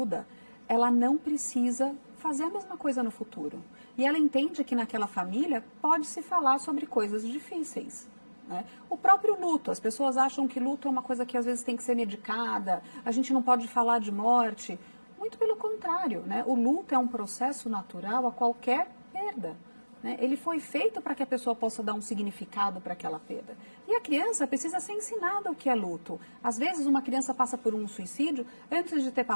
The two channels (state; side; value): inverted; both; correlation -1.00